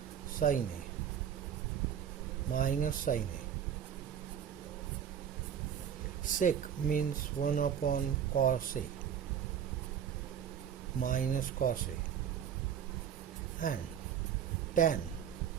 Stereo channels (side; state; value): left; quieter; 8.7 dB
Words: sin A minus sin A. Sec means 1 upon cos A minus cos A. And tan